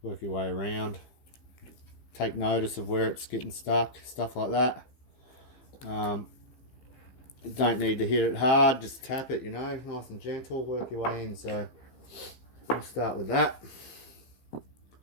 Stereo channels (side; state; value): right; late; 15 ms